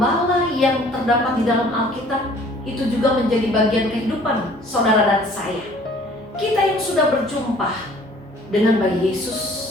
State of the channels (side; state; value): both; normal; correlation 0.53